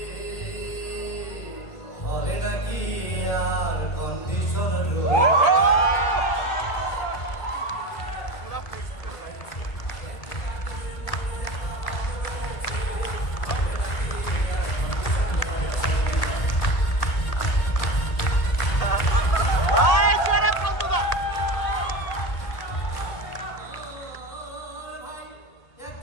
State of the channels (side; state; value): right; late; 1.8 ms